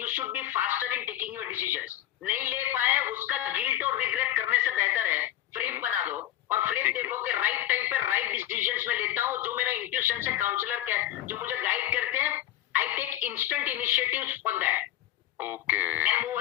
you should be faster in taking your decisions. नहीं ले पाए उसका गिल्ट और रिग्रेट करने से बेहतर है फ्रेम बना दो और फ्रेम देखो कि राइट टाइम पे राइट डिसीजंस में लेता हूँ, जो मेरा इंट्यूशन से काउंसलर जो मुझे गाइड करते हैं, I take instant initiatives on that. Okay, and move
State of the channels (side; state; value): right; quieter; 13.5 dB